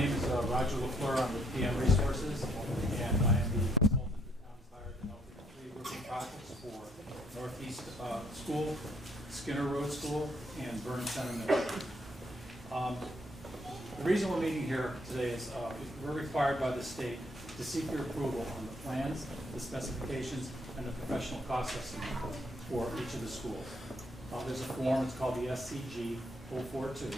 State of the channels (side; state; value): both; normal; correlation 0.69